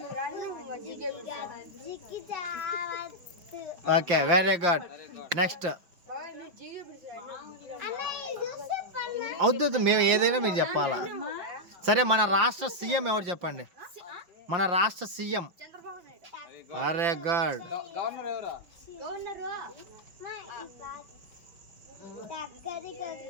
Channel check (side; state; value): left; late; 5.7 ms